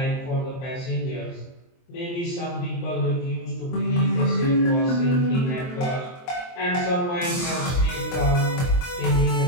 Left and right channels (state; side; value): late; right; 23 ms